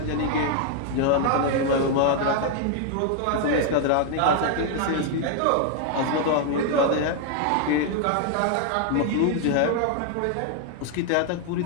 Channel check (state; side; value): different; both; correlation 0.00